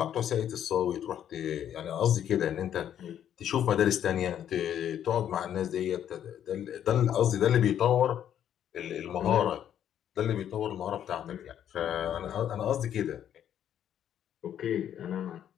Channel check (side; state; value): right; quieter; 10.1 dB